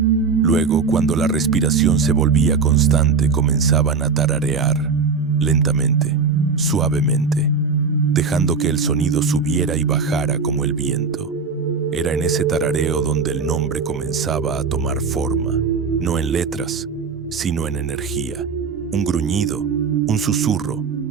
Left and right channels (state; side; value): quieter; left; 5.1 dB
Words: Luego, cuando la respiración se volvía constante, comenzaban a tararear, lentamente, suavemente, dejando que el sonido subiera y bajara como el viento. Era en ese tarareo donde el nombre comenzaba a tomar forma, no en letras, sino en energía. Un gruñido, un susurro,